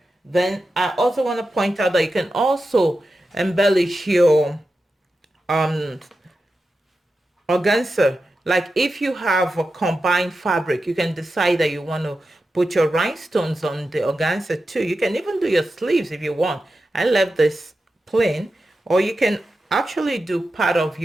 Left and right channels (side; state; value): both; normal; correlation 0.91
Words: Then I also want to point out that you can also embellish your um organza. Like if you have a combined fabric, you can decide that you want to put your rhinestones on the organza too. You can even do your sleeves if you want. I left this plain, or you can actually do part of